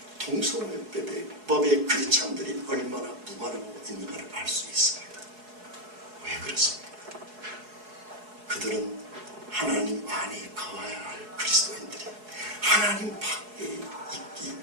동성애법의 크리스찬들이 얼마나 무관하고 있는가를 알 수 있습니다. 왜 그렇습니까? 그들은 하나님 안에 거해야 할 그리스도인들이 하나님 밖에 있기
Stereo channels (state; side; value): late; left; 4.7 ms